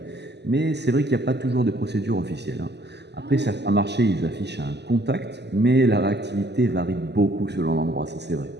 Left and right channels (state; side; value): late; left; 0.50 ms